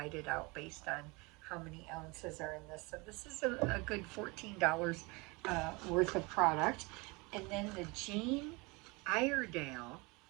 it out based on how many ounces are in this. So this is a good $14 worth of product. And then the Jane Iredale.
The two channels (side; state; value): left; quieter; 26.5 dB